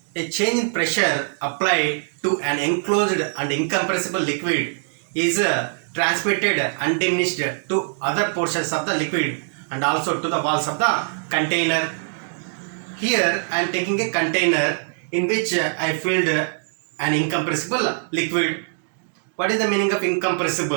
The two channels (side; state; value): left; silent; digital silence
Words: a change in pressure applied to an enclosed and incompressible liquid is transmitted undiminished to other portions of the liquid and also to the walls of the container. Here I am taking a container in which I filled an incompressible liquid. What is the meaning of